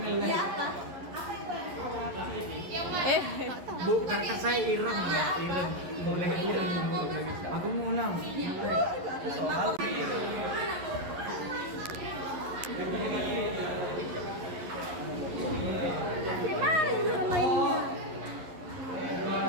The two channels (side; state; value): left; late; 11 ms